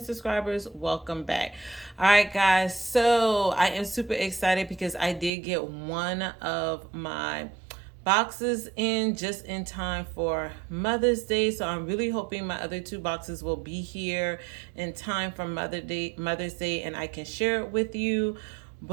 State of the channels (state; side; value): drops out; left; at 5.3 s